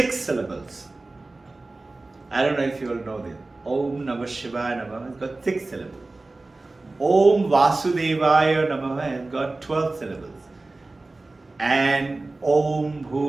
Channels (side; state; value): left; quieter; 3.2 dB